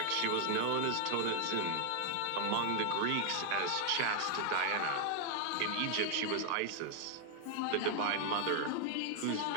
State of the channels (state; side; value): different; both; correlation 0.00